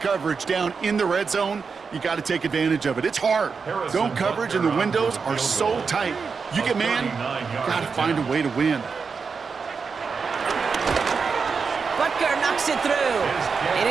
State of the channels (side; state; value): left; quieter; 5.3 dB